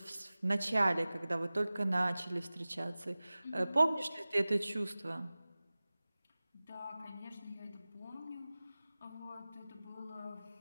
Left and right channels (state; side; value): inverted; both; correlation -0.98